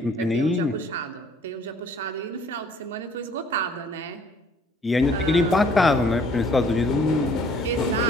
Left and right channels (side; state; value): both; normal; correlation 0.58